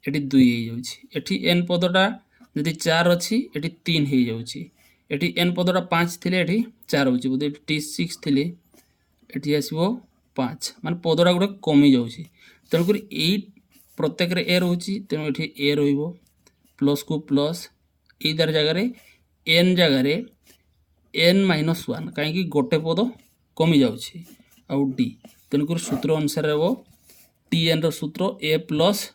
एठी 2 हो जाउची एठी एन पदटा जदि 4 अच्छी एठी 3 हो जाउची एठी एन पदटा 5 थिले एठी 4 होची बोधे टी 6 थिले एठी आसीबो 5 माने पदटा गुडा कमी जाउची तेणुक यही प्रत्येक रे ए रोची तेणु एठी ए रहिबो प्लस को प्लस ए दर जगह एन जगह एन माइनस 1 कहीं गोटे पद कमी जाउची आउ डी तेणुक सूत्र अनुसार वो टी एन रूत्र a plus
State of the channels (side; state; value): both; identical; correlation 1.00